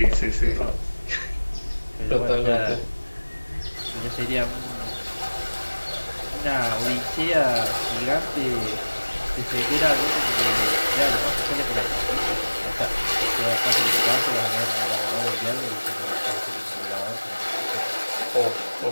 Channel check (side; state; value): both; inverted; correlation -1.00